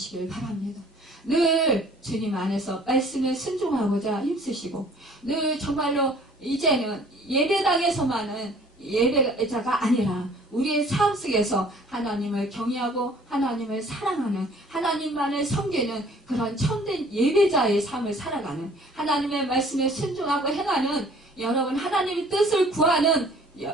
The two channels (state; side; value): normal; both; correlation 0.54